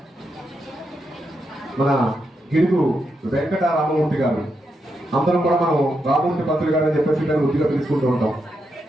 మన గిడుగు వెంకట రామమూర్తి గారు. అందరం కూడా మనం రామమూర్తి పంతులు గారు అని చెప్పేసి మేము వృద్ధిగా పిలుచుకుంటూ ఉంటాం.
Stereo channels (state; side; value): normal; both; correlation 0.83